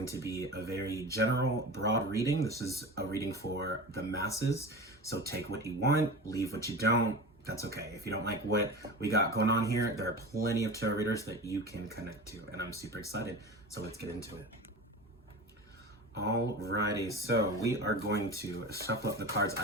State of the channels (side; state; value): both; normal; correlation 0.31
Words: to be a very general, broad reading. This is a reading for the masses, so take what you want, leave what you don't. That's okay. If you don't like what we got going on here, there are plenty of tarot readers that you can connect to, and I'm super excited. So let's get into it. Alrighty, so we are going to shuffle up the cards.